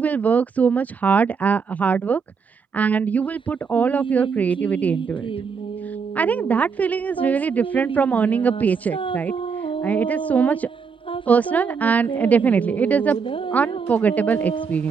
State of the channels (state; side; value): quieter; left; 5.7 dB